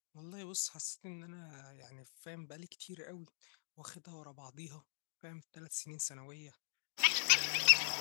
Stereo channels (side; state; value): right; silent; digital silence